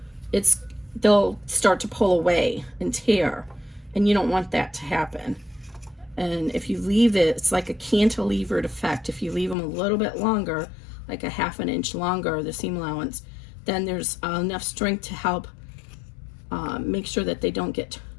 they'll start to pull away and tear. And you don't want that to happen. And if you leave it, it's like a cantilevered effect. If you leave them a little bit longer, like a 1/2 inch longer, the seam allowance, then there's enough strength to help make sure that they don't get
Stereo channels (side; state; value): right; drops out; at 9.6 s